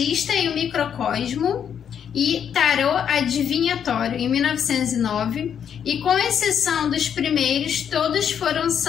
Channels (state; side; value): quieter; right; 8.3 dB